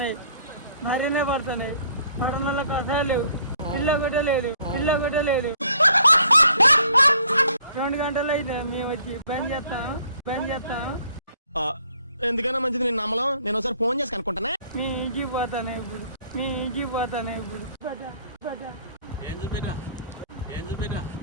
మరీనే పడుతున్నాయి. పడనలకు అసలు లేవు, పిల్ల కూడా లేదు, పిల్ల కూడా లేదు. 2 గంటలు అయితే మేము వచ్చి బంద్ చేస్తాం. ఎందుకైనా మంచిది నేను నమ్మలం. నేను ఒకసారి ఫోన్ చేసి కనుక్కుంటానే. నీ ఇంటికి పోతానే ఇప్పుడు,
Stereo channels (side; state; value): both; inverted; correlation -0.61